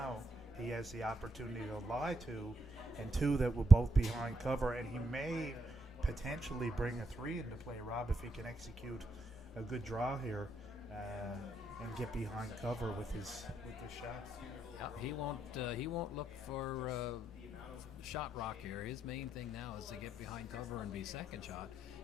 he has the opportunity to lie 2, and 2 that will both be behind cover. And he may potentially bring a 3 into play, Rob, if he can execute a good draw here and get behind cover with his shot. Yeah, he won't look for shot rock here. His main thing now is to get behind cover and be second shot,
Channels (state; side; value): normal; both; correlation 0.80